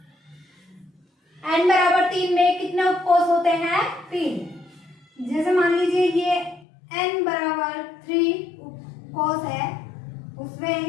n बराबर 3 में कितने उपकोष होते हैं? 3। जैसे मान लीजिए ये n बराबर 3 उपकोष है, उसमें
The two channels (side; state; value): right; drops out; at 6.7 s